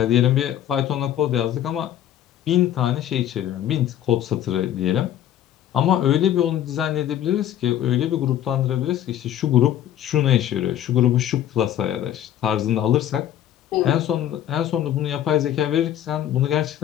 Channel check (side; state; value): right; quieter; 11.3 dB